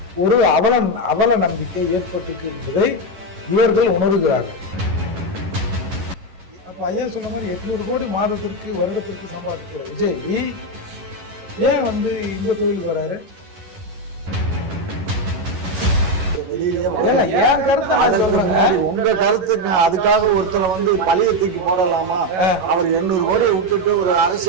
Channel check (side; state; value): left; late; 11 ms